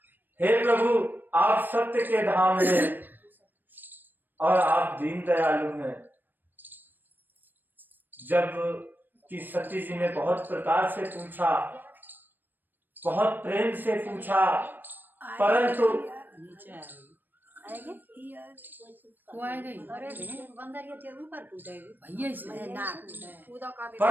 हे प्रभु, आप सत्य के धाम हैं और आप दीन दयालु हैं। जब कि सती जी ने बहुत प्रकार से पूछा, बहुत प्रेम से पूछा, परंतु वो आएगा ही। भैया से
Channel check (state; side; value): late; left; 0.092 ms